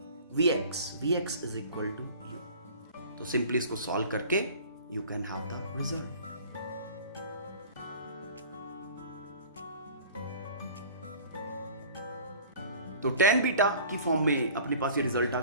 vx is equal to u, तो simply इसको सॉल्व करके you can have the result. तो tan beta की form में अपने पास ये result आ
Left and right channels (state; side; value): inverted; both; correlation -0.45